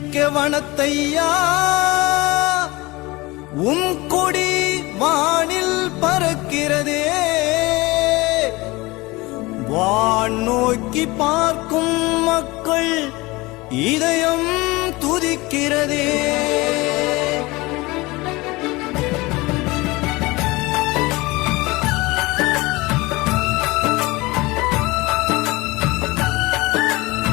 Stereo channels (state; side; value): quieter; right; 22.2 dB